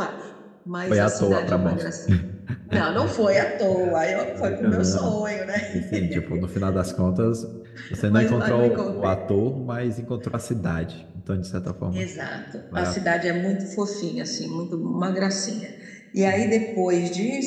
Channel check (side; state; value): both; identical; correlation 1.00